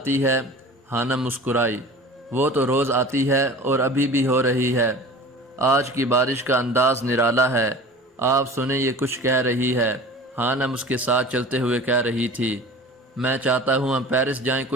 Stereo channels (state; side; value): normal; both; correlation 0.39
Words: ہے، ہانم مسکرائی۔ وہ تو روز آتی ہے اور ابھی بھی ہو رہی ہے۔ آج کی بارش کا انداز نرالا ہے۔ آپ سنیں، یہ کچھ کہہ رہی ہے، ہانم اس کے ساتھ چلتے ہوئے کہہ رہی تھی۔ میں چاہتا ہوں ہم پیرس جائیں